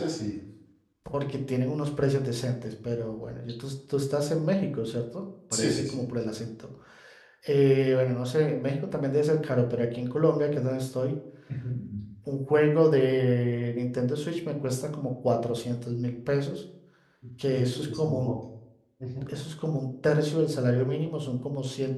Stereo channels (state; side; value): identical; both; correlation 1.00